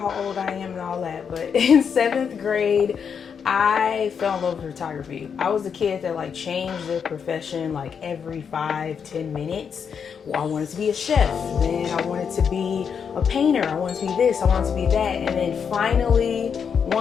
old I am and all that, but in 7th grade, I fell in love with photography. I was the kid that changed their profession every 5-10 minutes. Well, I wanted to be a chef, then I wanted to be a painter, I wanted to be this, I wanted to be that. And then finally,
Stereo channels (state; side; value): quieter; right; 6.8 dB